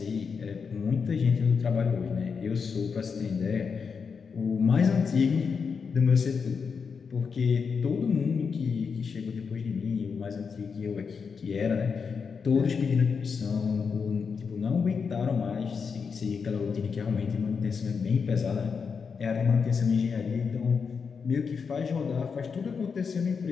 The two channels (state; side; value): quieter; right; 5.8 dB